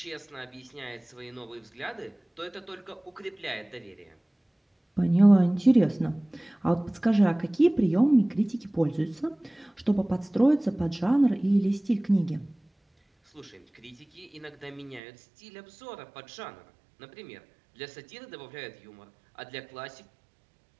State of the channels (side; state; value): left; drops out; at 15.0 s